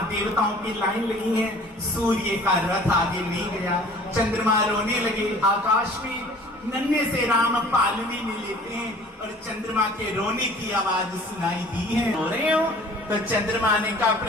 देवताओं की लाइन लगी है, सूर्य का रथ आगे नहीं गया, चंद्रमा रोने लगे। आकाश में नन्हे से राम पालने में लेते हैं और चंद्रमा के रोने की आवाज सुनाई दी है। रो रहे हो? तो चंद्रमा ने कहा,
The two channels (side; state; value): both; normal; correlation 0.49